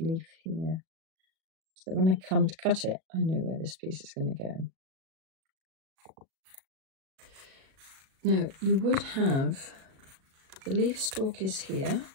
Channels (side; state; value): left; late; 37 ms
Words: here, so that when I come to cut it, I know where this piece is going to go. Now, you would have, the leaf stalk is here,